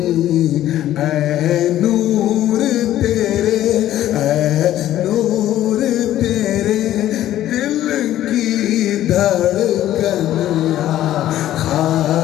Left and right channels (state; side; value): quieter; right; 13.0 dB